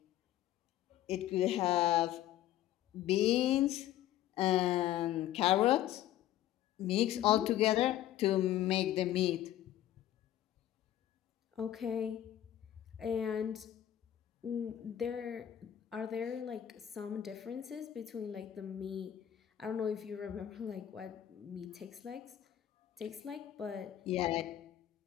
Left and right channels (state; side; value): quieter; right; 12.3 dB